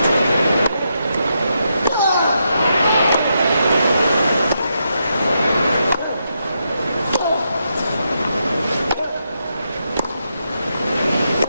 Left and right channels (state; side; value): inverted; both; correlation -0.83